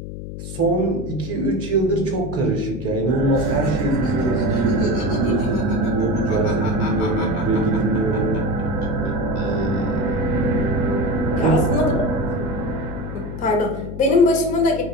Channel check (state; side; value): noise; left; hum, 9 dB below the sound